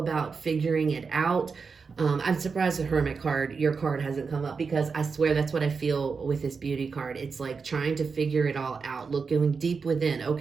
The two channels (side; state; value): left; quieter; 5.1 dB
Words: figuring it out. I'm surprised the Hermit card, your card, hasn't come up, because I swear that's what I feel with this Beauty card. It's like trying to figure it all out, going deep within.